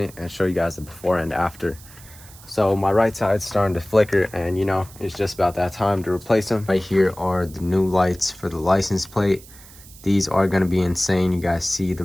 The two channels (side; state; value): right; noise; hiss, 21 dB below the sound